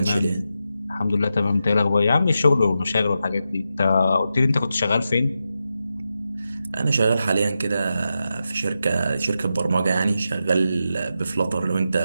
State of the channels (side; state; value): both; inverted; correlation -0.88